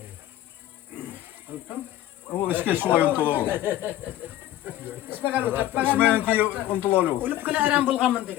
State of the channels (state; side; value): quieter; right; 13.4 dB